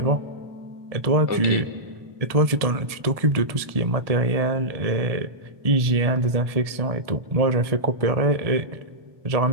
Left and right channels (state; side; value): late; left; 1.7 ms